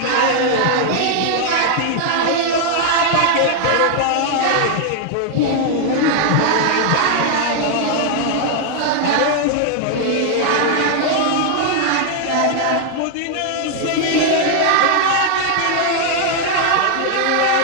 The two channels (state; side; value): different; both; correlation 0.00